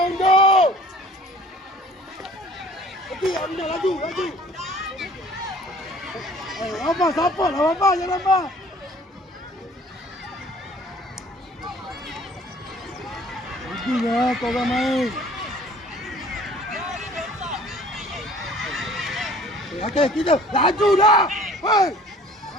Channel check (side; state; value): both; normal; correlation 0.51